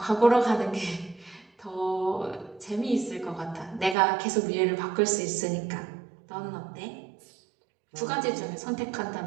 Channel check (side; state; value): left; drops out; at 4.0 s